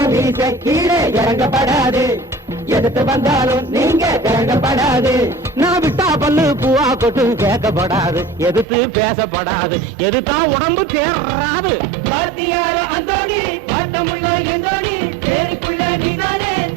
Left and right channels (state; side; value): drops out; left; at 8.7 s